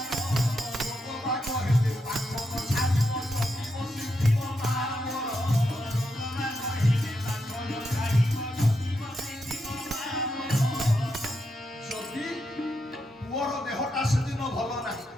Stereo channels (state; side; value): normal; both; correlation 0.83